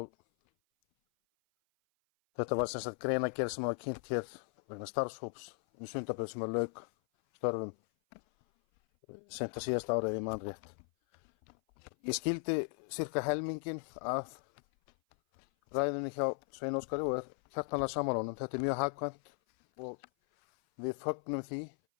þetta var sem sagt greinargerð sem var kynnt hér vegna starfshóps Sundabraut sem var lauk störfum seint á síðasta árið í man rétt. Ég skildi cirka helmingin af ræðunni hjá Svein Óskari og er hjartanlega sammála honum. Þetta er mjög hagkvæmt og við fögnum því,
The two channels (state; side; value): silent; right; 53 dB below the other